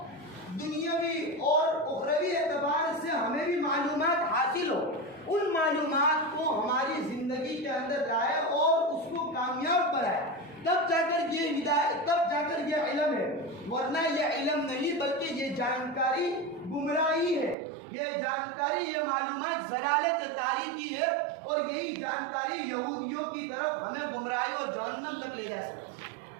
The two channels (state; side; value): drops out; left; at 17.6 s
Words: دنیاوی اور اخروی اعتبار سے ہمیں بھی معلومات حاصل ہو، ان معلومات کو ہماری زندگی کے اندر لائے اور اس کو کامیاب بنائے، تب جا کر یہ ہدایت، تب جا کر یہ علم ہے، ورنہ یہ علم نہیں بلکہ یہ جانکاری گمراہی ہے، یہ جانکاری، یہ معلومات ضلالت تاریخی ہے، اور یہی جانکاری یہودیوں کی طرف ہمیں گمراہی اور جہنم تک لے جا سکتی ہے۔